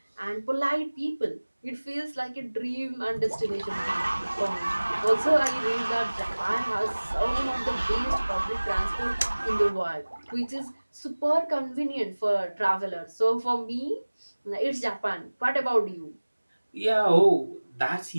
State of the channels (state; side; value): inverted; both; correlation -1.00